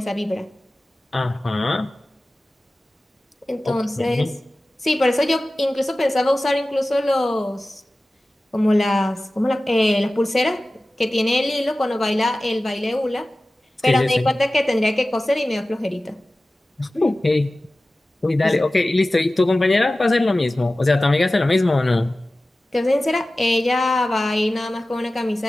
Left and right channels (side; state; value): both; normal; correlation 0.96